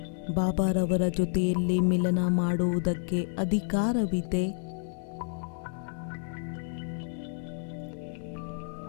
ಬಾಬಾರವರ ಜೊತೆಯಲ್ಲಿ ಮಿಲನ ಮಾಡುವುದಕ್ಕೆ ಅಧಿಕಾರವಿದೆ.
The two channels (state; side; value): silent; right; 58 dB below the other